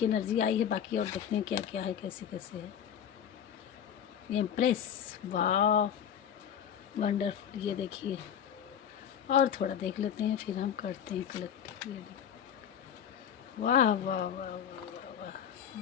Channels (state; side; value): quieter; right; 8.9 dB